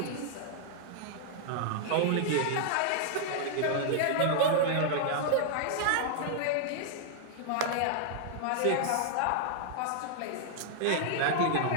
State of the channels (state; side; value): different; both; correlation -0.01